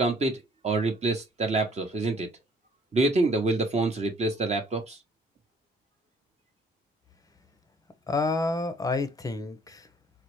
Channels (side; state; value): both; normal; correlation 0.60